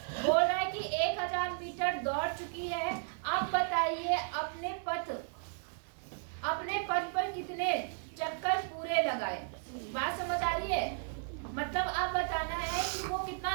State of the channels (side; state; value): left; silent; 55 dB below the other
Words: बोल रहा है कि 1000 मीटर दौड़ चुकी है। अब बताइए अपने पथ पर कितने चक्कर पूरे लगाए। बात समझ आ रही है? मतलब अब बताना है कि वो